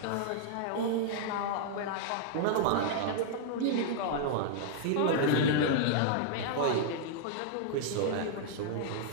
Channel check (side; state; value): both; different; correlation -0.01